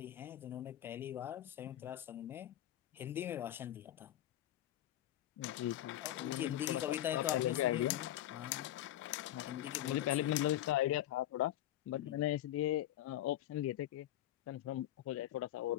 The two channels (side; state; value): right; quieter; 13.1 dB